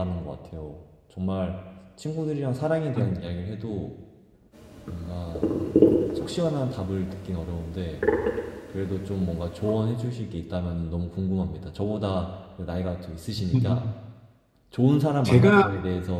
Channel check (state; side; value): identical; both; correlation 1.00